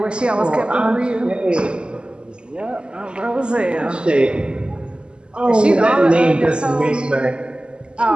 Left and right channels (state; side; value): late; left; 0.050 ms